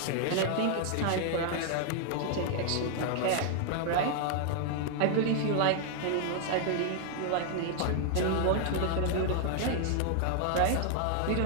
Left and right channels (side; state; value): both; different; correlation 0.00